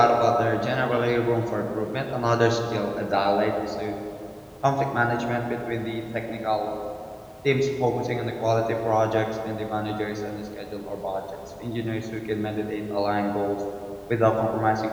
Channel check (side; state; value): both; identical; correlation 1.00